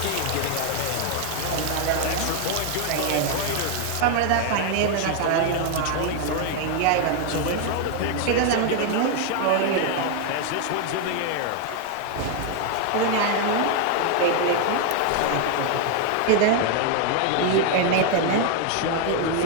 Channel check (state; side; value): different; both; correlation 0.00